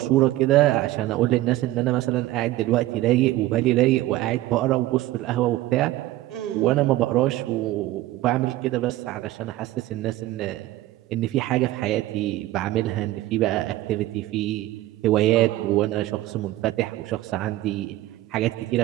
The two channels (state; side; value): quieter; left; 16.2 dB